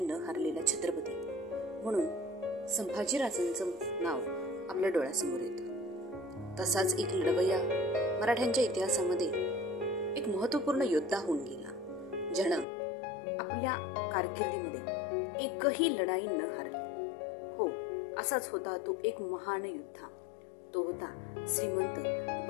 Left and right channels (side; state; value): right; drops out; at 12.7 s